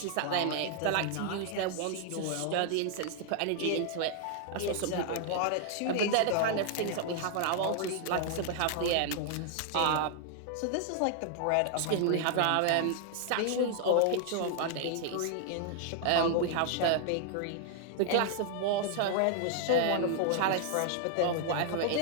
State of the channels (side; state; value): both; different; correlation 0.00